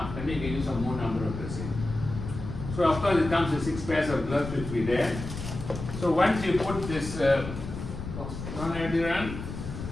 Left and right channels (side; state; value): left; noise; rumble, 8 dB below the sound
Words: then you can use a more number of dressing. So of course it comes with 6 pairs of gloves which will be there. So once you put this non-adherent,